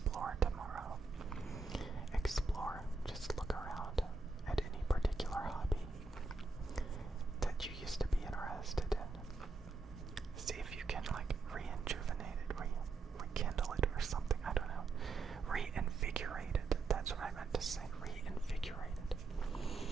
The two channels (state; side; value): quieter; left; 3.9 dB